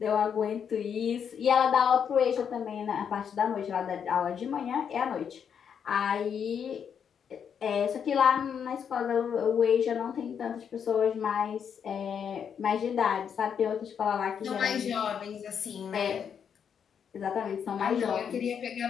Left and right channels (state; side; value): quieter; right; 7.6 dB